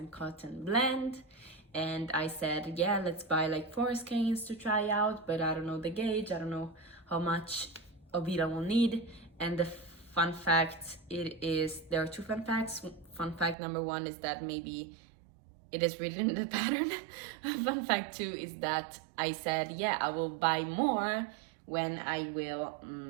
cotton blend. And I said, yeah, let's buy like 4 skeins to try out, but I don't know the gauge, I don't know how much of it I will need. And the fun fact, there are 2 fun facts. Fun fact number 1 is that maybe it is written in the pattern. Fun fact 2 is that I said, yeah, I will buy more when I will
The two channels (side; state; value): left; drops out; at 13.6 s